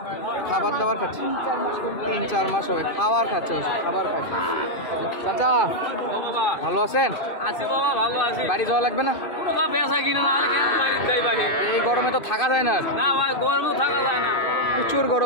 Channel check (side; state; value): right; late; 2.5 ms